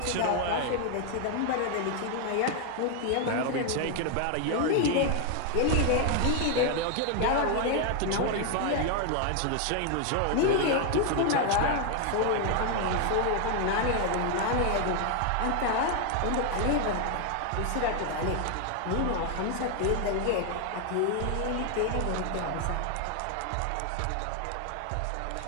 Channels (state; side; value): different; both; correlation 0.00